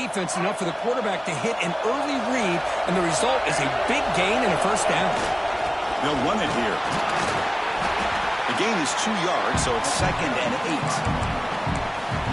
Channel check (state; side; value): identical; both; correlation 1.00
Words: enough for the quarterback to hit an early read, and the result is a big gain and a first down. They'll run it here. The gain is 2 yards, so it's 2nd and 8.